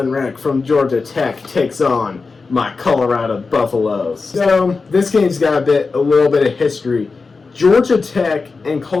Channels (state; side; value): quieter; right; 4.3 dB